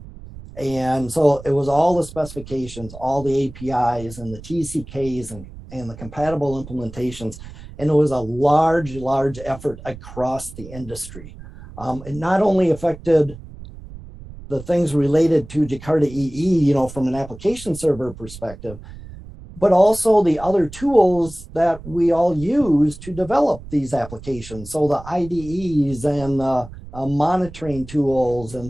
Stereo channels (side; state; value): right; noise; rumble, 16 dB below the sound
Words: And so it was all the specifications, all the APIs and the TCKs and the compatible implementations. And it was a large effort across the industry. It not only affected the things related to Jakarta EE, from an application server perspective, but also the other tools that we all use to develop these applications. So the IDEs and monitoring tools